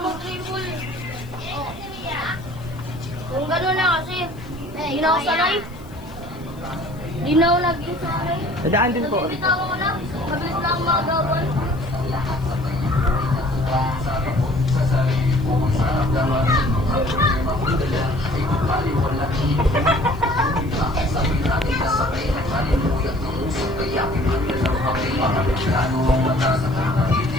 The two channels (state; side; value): noise; left; hiss, 26 dB below the sound